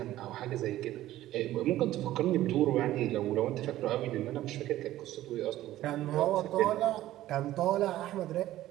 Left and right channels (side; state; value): left; quieter; 14.5 dB